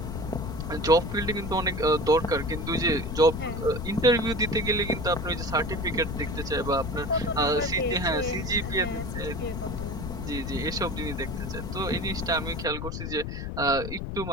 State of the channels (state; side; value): noise; left; rumble, 5 dB below the sound